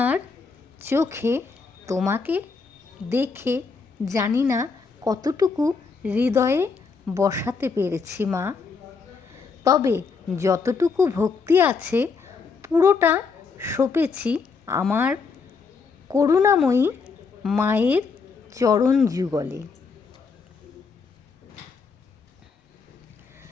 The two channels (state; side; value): quieter; right; 5.0 dB